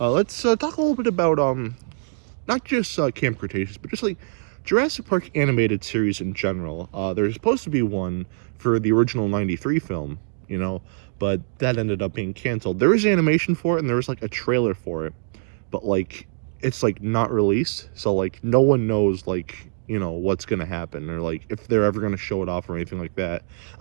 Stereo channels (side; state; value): left; silent; digital silence